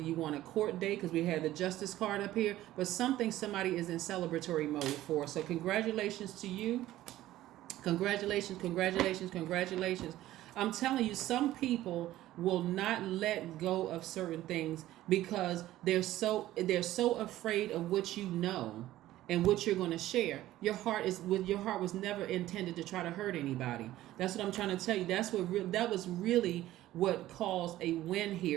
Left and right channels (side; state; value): left; quieter; 14.8 dB